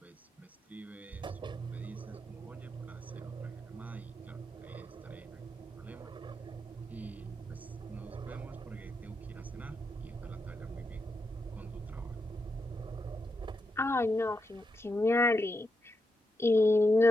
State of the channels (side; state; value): both; normal; correlation 0.85